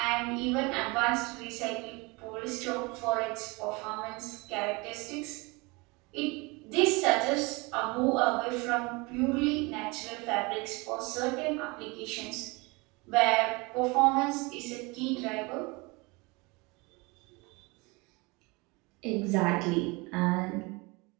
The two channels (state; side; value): quieter; left; 26.3 dB